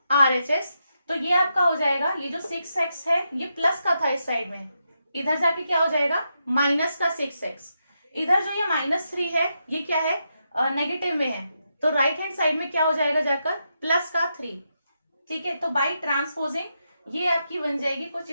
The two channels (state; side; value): inverted; both; correlation -0.84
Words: RHS। तो ये आपका हो जाएगा, ये जो 6x है ये प्लस का था इस साइड में, इधर जाके क्या हो जाएगा माइनस का 6x। इधर जो ये माइनस 3 है ये क्या है, नेगेटिव में है, तो राइट हैंड साइड में क्या हो जाएगा जाकर प्लस का 3। ठीक है, तो बाय ट्रांसपोजिंग ये आपकी बन जाएगी कुछ